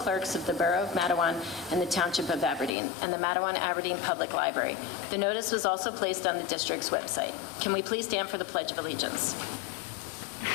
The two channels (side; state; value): right; drops out; at 2.7 s